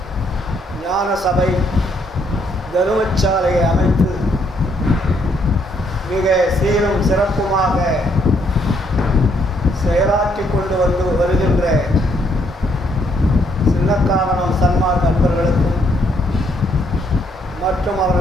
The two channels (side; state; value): both; normal; correlation 0.71